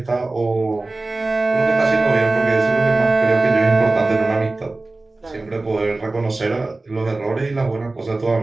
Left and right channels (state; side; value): quieter; left; 3.2 dB